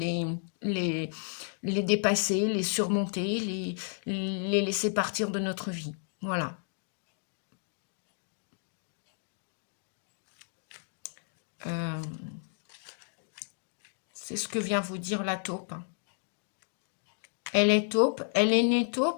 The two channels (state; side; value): silent; right; 56 dB below the other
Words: les dépasser, les surmonter, les laisser partir de notre vie. Voilà. C'est ce que vient vous dire la taupe. Elle est taupe, elle est née